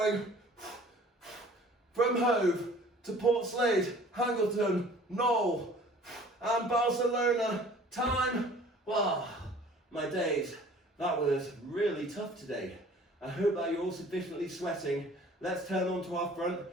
From Hove to Port Slade, Hangleton, Knoll, and Barcelona. Time, wow, my days. That was really tough today. I hope that you're all sufficiently sweating. Let's turn on to our front,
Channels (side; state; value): both; normal; correlation 0.50